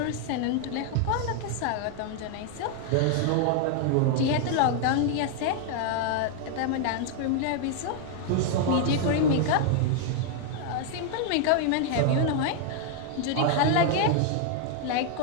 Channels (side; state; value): both; different; correlation 0.00